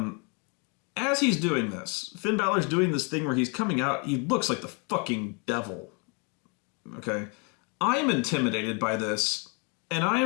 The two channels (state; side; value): quieter; right; 34.6 dB